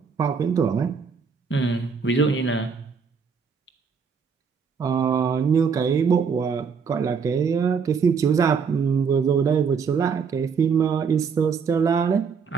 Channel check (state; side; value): quieter; left; 5.9 dB